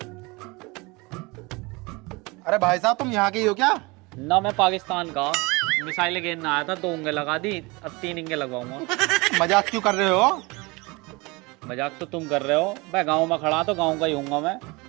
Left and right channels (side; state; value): left; quieter; 25.4 dB